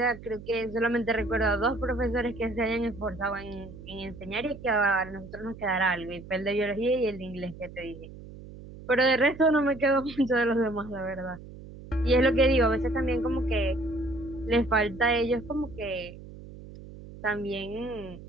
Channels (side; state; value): right; noise; hum, 16 dB below the sound